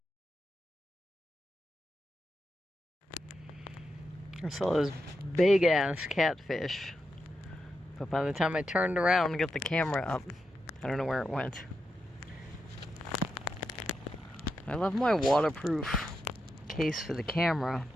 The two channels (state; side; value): normal; both; correlation 0.86